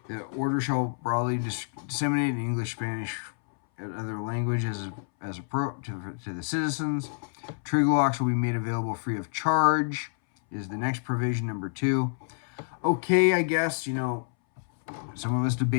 The order shall broadly disseminate in English, Spanish, and other languages as appropriate to the citizens. Trigger locks will be made available free of charge, is the next provision, number 2. Okay, I guess, some of us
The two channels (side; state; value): right; silent; 59 dB below the other